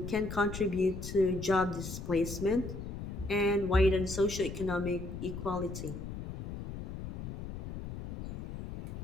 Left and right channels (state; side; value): noise; left; rumble, 8 dB below the sound